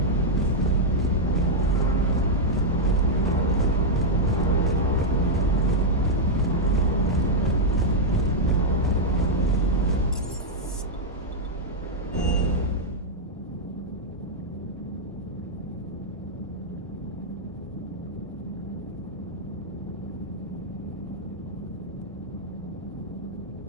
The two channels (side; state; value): both; normal; correlation -0.03